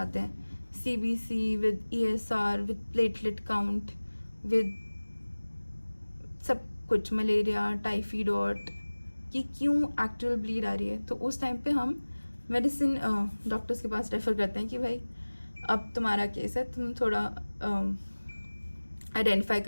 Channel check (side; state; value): both; inverted; correlation -1.00